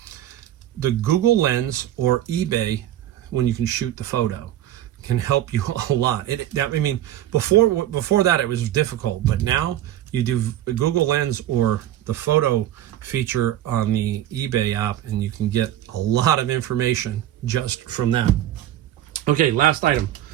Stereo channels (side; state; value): left; quieter; 12.5 dB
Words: The Google Lens or eBay, when you can shoot the photo, can help you a lot. Before that, it was difficult, but now you do Google Lens or the photo feature on the eBay app, and you can get a lot of information just from that. Okay, last item.